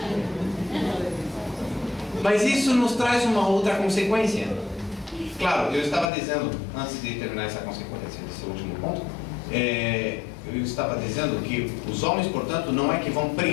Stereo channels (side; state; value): right; drops out; at 6.1 s